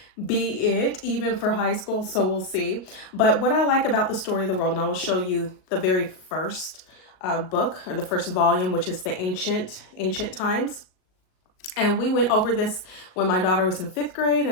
be it even for high school, so we'll see. But what I like about the story of the world, and I will show you the very first book, or the first volume, which is the ancient times. And we went over this when my daughter was in 5th grade,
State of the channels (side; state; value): right; late; 38 ms